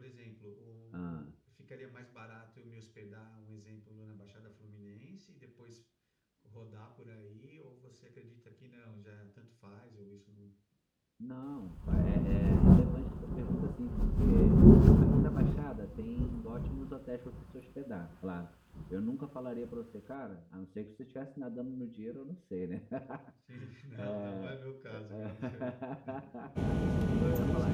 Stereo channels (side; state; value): both; identical; correlation 1.00